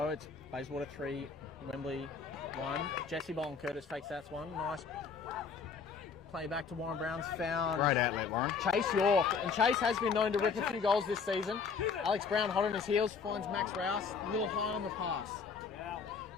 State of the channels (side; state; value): right; quieter; 5.6 dB